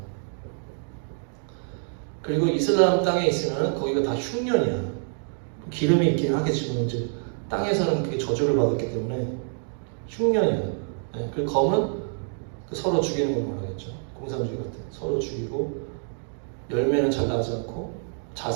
그리고 이슬람 땅에 있으면 거기가 다 흉년이야. 기름이 있긴 하겠지만 이제 땅에서는 그게 저주를 받았기 때문에 흉년이야. 네, 그리고 검은 서로 죽이는 걸 말하겠죠. 공산주의 같은 서로 죽이고 열매는 잘 나지 않고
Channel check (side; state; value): left; silent; 61 dB below the other